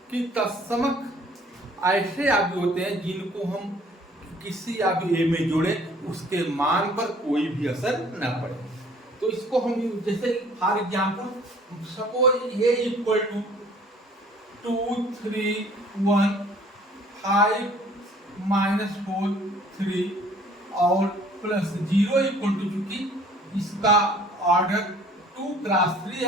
कि तत्समक ऐसे आव्यूह होते हैं जिनको हम किसी आव्यूह ए में जोड़े उसके मान पर कोई भी असर न पड़े। तो इसको हम जैसे for example suppose A equal to 2 3 1 5 minus 4 3 और प्लस 0 इक्वल टू, चूंकि इसका ऑर्डर 2 क्रॉस 3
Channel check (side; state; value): both; normal; correlation 0.55